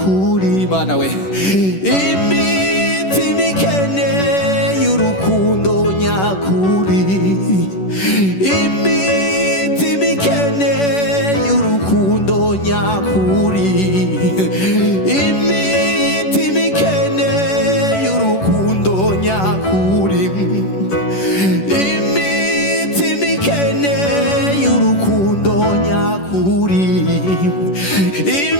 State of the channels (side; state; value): right; late; 11 ms